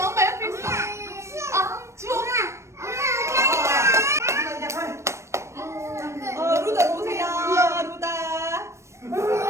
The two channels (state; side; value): late; left; 0.13 ms